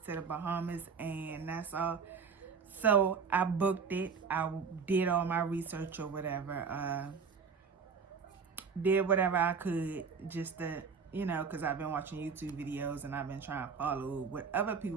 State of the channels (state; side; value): quieter; left; 5.7 dB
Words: to the Bahamas and Nassau. So I booked it. I did all my research or whatever. Did whatever I could just to, because I've been watching YouTube videos and I've been trying to follow what other